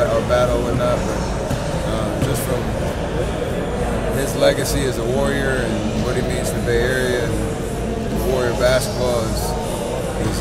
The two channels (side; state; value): both; identical; correlation 1.00